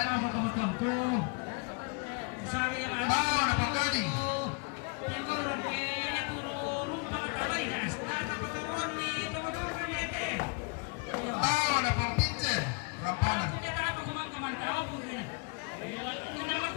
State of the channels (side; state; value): right; quieter; 31.5 dB